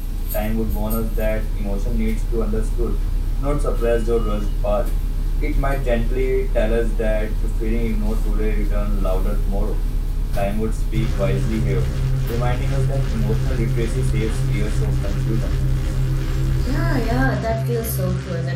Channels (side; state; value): both; identical; correlation 1.00